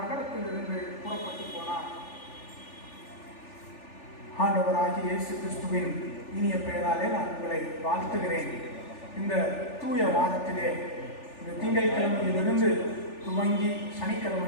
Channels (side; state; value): right; late; 3.4 ms